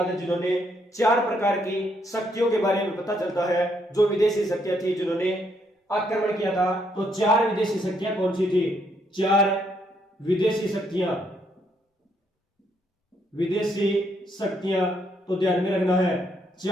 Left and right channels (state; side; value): normal; both; correlation 0.73